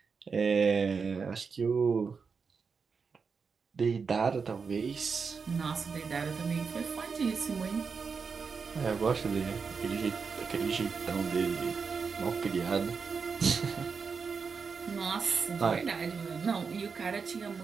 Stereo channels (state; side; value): quieter; left; 5.4 dB